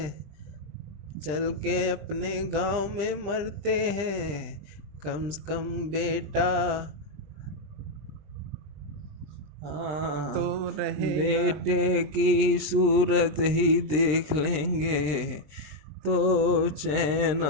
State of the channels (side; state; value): left; late; 20 ms